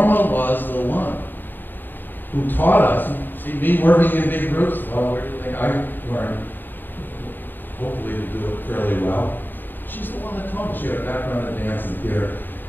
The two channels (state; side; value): late; right; 0.092 ms